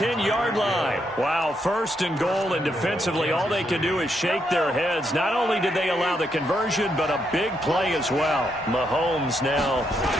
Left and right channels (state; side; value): normal; both; correlation 0.78